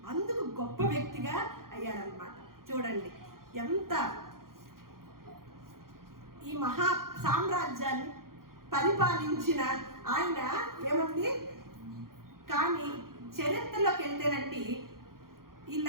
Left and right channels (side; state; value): left; late; 0.92 ms